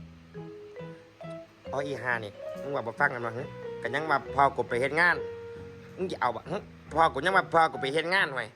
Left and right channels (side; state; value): both; identical; correlation 1.00